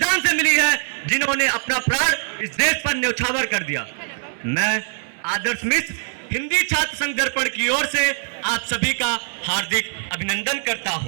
से मिली है जिन्होंने अपना प्राण इस देश पर न्यौछावर कर दिया। मैं आदर्श मिश्र हिंदी छात्र संघ दर्पण की ओर से आप सभी का हार्दिक अभिनंदन करता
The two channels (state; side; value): silent; left; 64 dB below the other